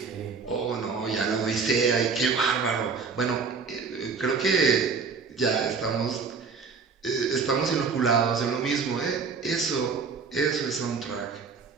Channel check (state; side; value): quieter; left; 5.2 dB